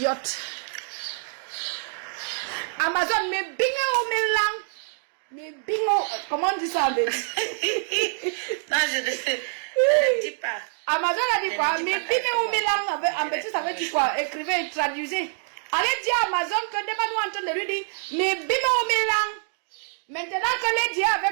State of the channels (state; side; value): silent; left; 61 dB below the other